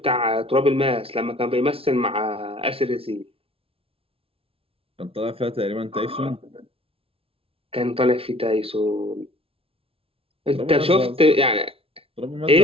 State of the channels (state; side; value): late; left; 0.27 ms